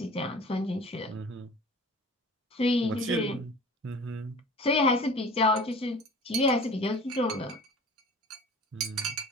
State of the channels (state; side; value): normal; both; correlation 0.43